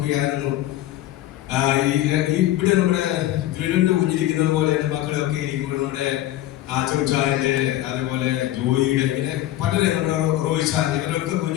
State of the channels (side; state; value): right; quieter; 14.2 dB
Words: ഇവിടെ നമ്മുടെ വീടിന്റെ കുഞ്ഞിരിക്കുന്നത് പോലെ എൻ്റെ മക്കളൊക്കെ ഇരിക്കുമ്പോൾ നമ്മുടെ ചോച്ചായന്റെ അതേപോലെ ജോയിയുടെ ഇങ്ങനെ പലരെ നമ്മുടെ റോയിച്ചാൻ ഇവരൊക്കെ